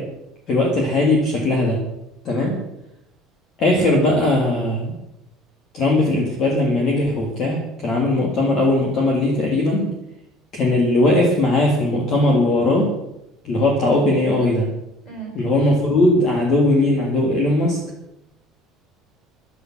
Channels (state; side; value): normal; both; correlation 0.52